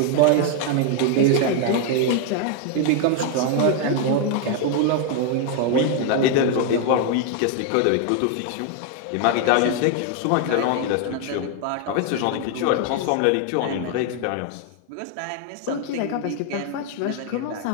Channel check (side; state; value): both; different; correlation 0.01